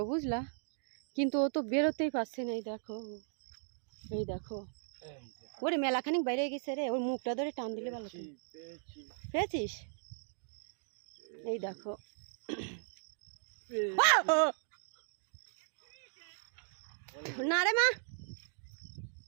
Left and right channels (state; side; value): silent; left; digital silence